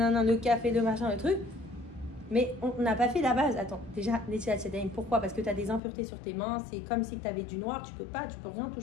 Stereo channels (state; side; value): drops out; right; at 5.8 s